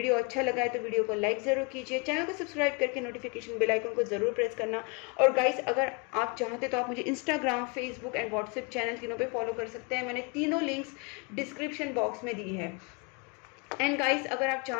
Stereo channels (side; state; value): right; quieter; 30.5 dB